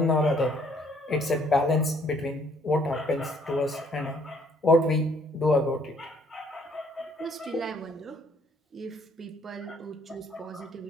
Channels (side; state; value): both; normal; correlation 0.63